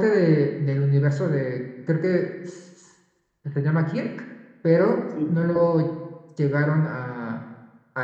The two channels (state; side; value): identical; both; correlation 1.00